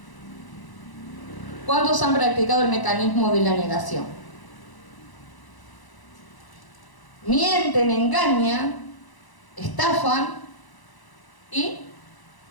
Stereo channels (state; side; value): late; right; 1.0 ms